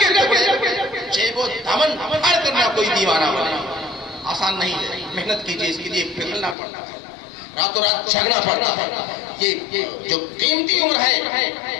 ٹکڑے. جیب و دامن پھاڑ کرنا کوئی دیوانہ بنا آسان نہیں ہے، محنت کیجیے، اس کے لیے پگھلنا پڑتا ہے. راتوں رات جھگنا پڑتا ہے. یہ جو قیمتی عمر ہے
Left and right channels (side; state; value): right; drops out; at 6.6 s